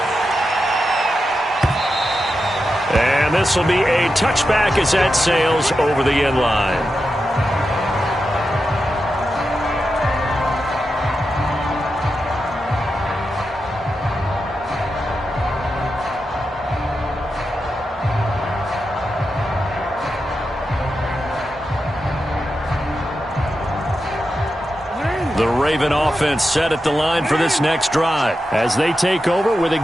And this will be a touchback as that sails over the end line. The Raven offense set at the line for this next drive as they take over with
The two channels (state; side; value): normal; both; correlation 0.89